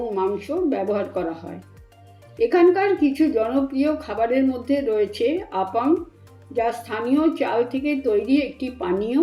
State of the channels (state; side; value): identical; both; correlation 1.00